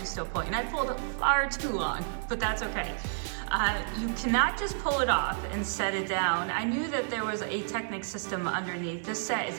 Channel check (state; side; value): silent; left; 58 dB below the other